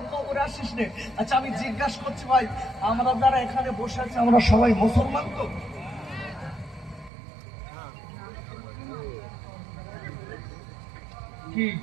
কবরে আসিস নে। আচ্ছা, আমি জিজ্ঞাসা করছি ভাই, আমরা যারা এখানে বসে আছি, আমরা সবাই মুসলমান তো? কি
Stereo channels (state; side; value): drops out; left; at 7.1 s